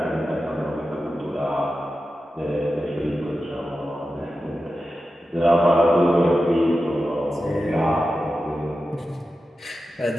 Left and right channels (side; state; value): both; normal; correlation 0.92